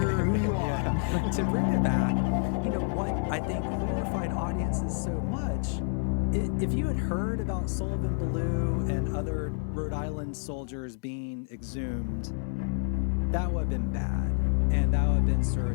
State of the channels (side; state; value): right; silent; 59 dB below the other